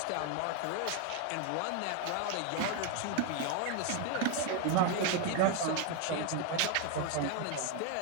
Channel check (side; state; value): both; different; correlation 0.01